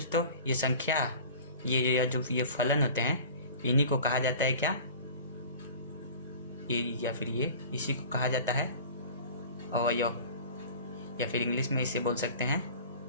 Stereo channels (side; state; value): both; inverted; correlation -0.41